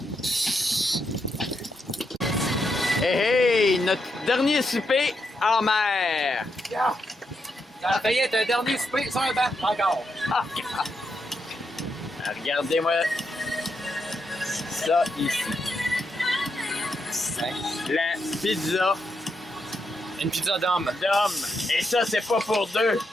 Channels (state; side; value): normal; both; correlation 0.82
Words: Hey, hey, notre dernier souper en mer. Ça a failli être un dernier souper sur un banc, encore. Regardez-moi ça ici. La pizza Une pizza d'homme. d'homme. Et ça, c'est pas pour deux.